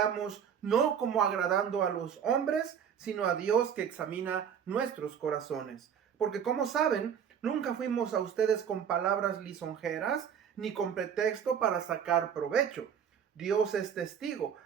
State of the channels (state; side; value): quieter; left; 8.0 dB